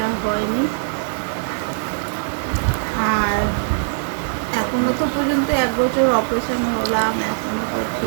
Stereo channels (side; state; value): left; silent; 65 dB below the other